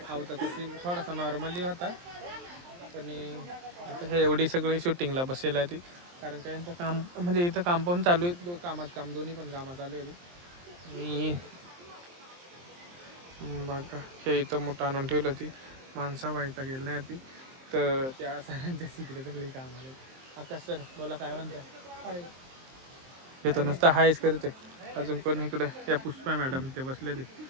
आवताचा सीन थोडासा नॉर्मली होता. पण आता हे एवढी सगळी शूटिंगला बसेल आहे ती. कारण का यांचं काम म्हणजे इथं काम पण चालू आहे. कामात काम दोन्ही पण कामं चालू आहे. मी बघा हे इथं मोठं आणून ठेवलं. ती माणसं व्हायचा गेलं नाही ती. तर त्या सरांच्या तिकडे सगळे काम आले. आकाश सर बोला काय म्हणताय? येतो नुसतं हायच करते. अजून कोण इकडे या पुष्पा मॅडम ते बसले ते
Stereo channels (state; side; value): late; left; 23 ms